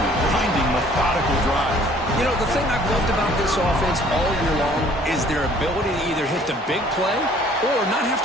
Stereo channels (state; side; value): normal; both; correlation 0.57